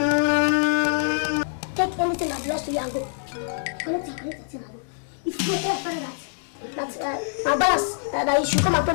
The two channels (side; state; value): right; silent; digital silence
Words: anything that belongs to you and go. Collect it and go. If you tell your father that my balance, that you should come and pay